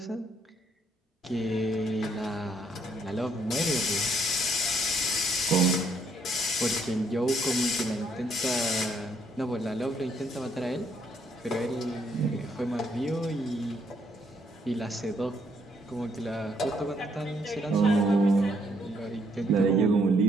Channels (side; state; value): both; normal; correlation 0.70